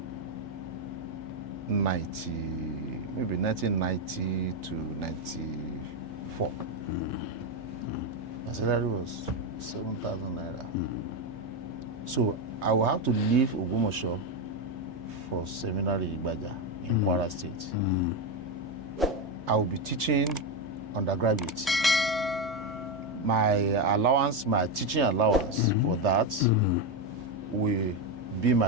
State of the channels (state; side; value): normal; both; correlation 0.08